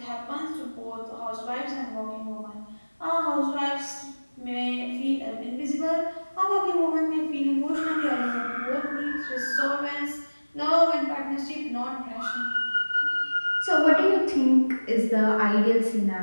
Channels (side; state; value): both; inverted; correlation -1.00